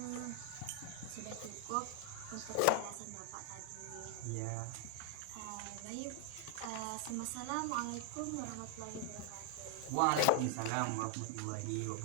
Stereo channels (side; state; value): both; different; correlation 0.00